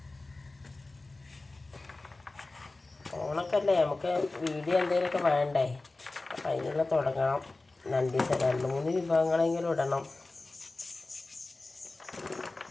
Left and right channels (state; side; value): quieter; right; 3.2 dB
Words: ഓണക്കല്ലേ, നമുക്ക് വീഡിയോ എന്തെങ്കിലുമൊക്കെ വേണ്ടേ? അപ്പം അതിനുള്ള തുടങ്ങണം. 2-3 വിഭവങ്ങളെങ്കിലും ഇടണം.